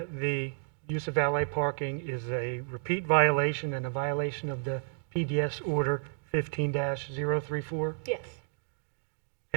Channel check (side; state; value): left; silent; digital silence